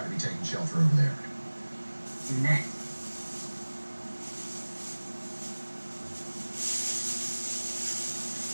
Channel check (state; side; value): inverted; both; correlation -1.00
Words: to be taking shelter over there. Next.